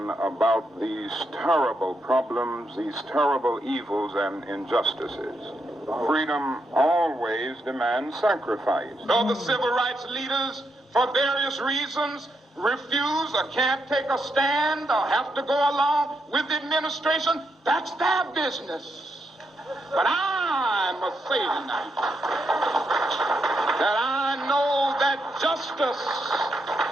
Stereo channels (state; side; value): normal; both; correlation 0.81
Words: about these terrible problems, these terrible evils and injustices. Freedom always demands sacrifice. Though the civil rights leaders, for various reasons, refuse or can't take a stand or have to go along with the administration, that's their business. But I must say tonight that I know that justice